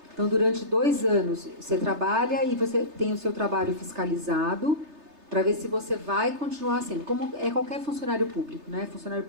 Então, durante 2 anos, você trabalha e você tem o seu trabalho fiscalizado para ver se você vai continuar sendo. Como é qualquer funcionário público, né? Funcionário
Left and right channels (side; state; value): left; late; 3.3 ms